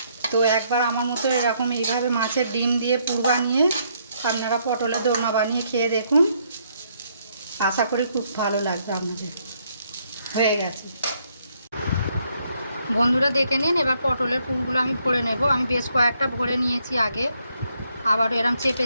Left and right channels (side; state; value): both; inverted; correlation -0.72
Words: তো একবার আমার মতো এরকম এইভাবে মাছের ডিম দিয়ে পুর বানিয়ে আপনারা পটলের দোরমা বানিয়ে খেয়ে দেখুন, আশা করি খুব ভালো লাগবে আপনাদের। হয়ে গেছে বন্ধুরা, দেখে নিন। এবার পটলের পুরগুলো আমি ভরে নেব। আমি বেশ কয়েকটা ভরে নিয়েছি আগে, আবার এরম চেপে